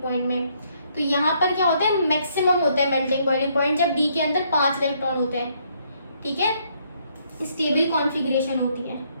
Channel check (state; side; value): inverted; both; correlation -0.70